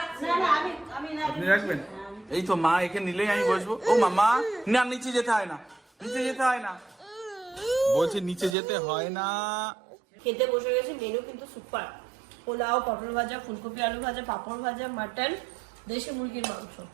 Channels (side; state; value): left; drops out; at 8.6 s